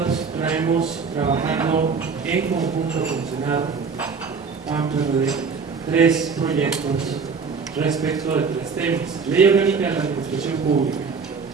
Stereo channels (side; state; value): left; quieter; 5.3 dB